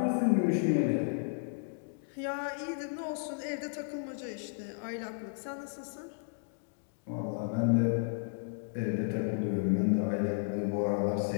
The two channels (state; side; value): silent; right; digital silence